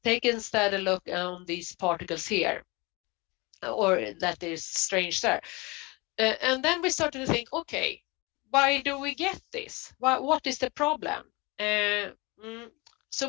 Take instead a look on these particles here, or that is strange there. And then we started to think, okay, why do we get this? What is the problem? So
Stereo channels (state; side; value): quieter; right; 25.7 dB